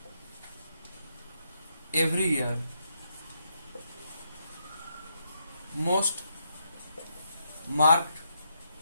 every year most marked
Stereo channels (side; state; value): both; inverted; correlation -0.78